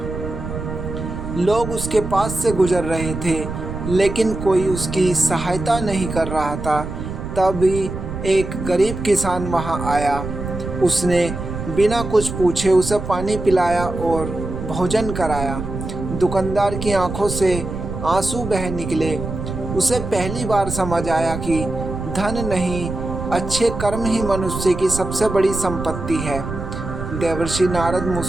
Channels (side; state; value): right; noise; rumble, 7 dB below the sound